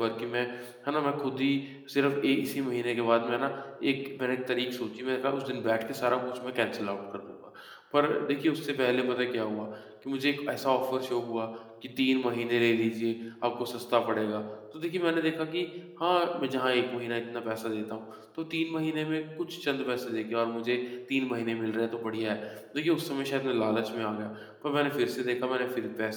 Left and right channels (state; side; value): identical; both; correlation 1.00